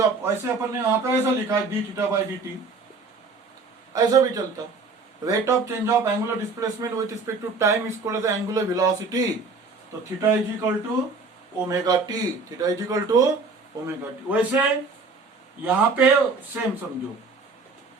of, ऐसे अपन ने यहाँ पे ऐसा लिखा है d theta by d t, ऐसा भी चलता. Rate of change of angular displacement with respect to time is called as angular velocity. तो theta is equal to omega t, theta is equal to omega t. वैसे यहां पे सेम समझो.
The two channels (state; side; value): quieter; left; 4.0 dB